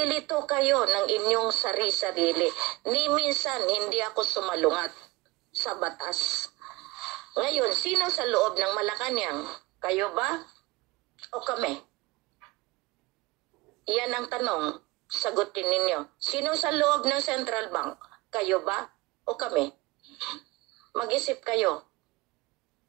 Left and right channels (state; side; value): quieter; left; 22.2 dB